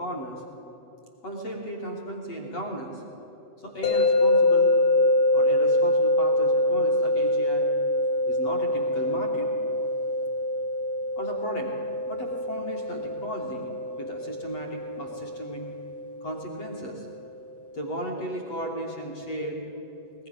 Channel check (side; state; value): right; late; 8.1 ms